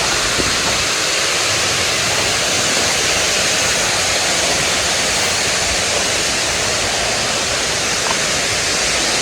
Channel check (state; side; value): identical; both; correlation 1.00